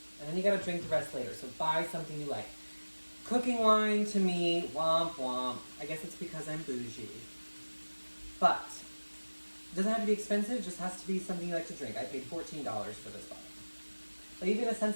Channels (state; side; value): inverted; both; correlation -1.00